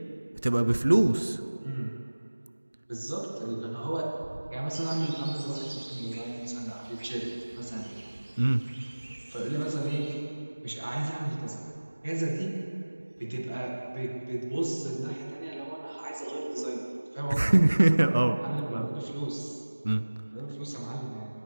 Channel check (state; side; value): inverted; both; correlation -1.00